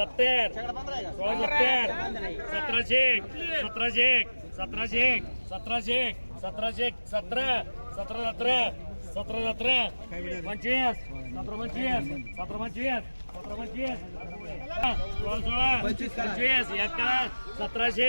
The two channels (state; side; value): inverted; both; correlation -1.00